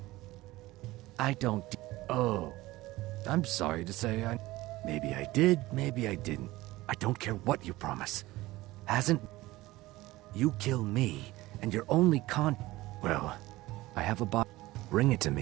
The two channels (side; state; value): left; quieter; 18.6 dB